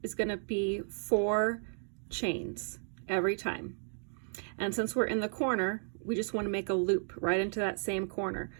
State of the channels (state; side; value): silent; left; digital silence